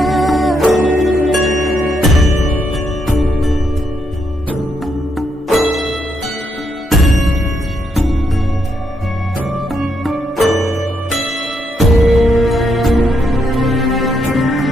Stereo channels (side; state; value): both; normal; correlation 0.78